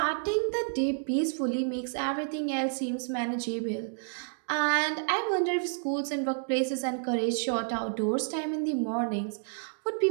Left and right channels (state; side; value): silent; left; digital silence